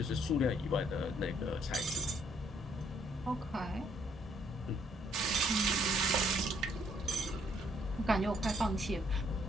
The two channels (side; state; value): both; normal; correlation 0.68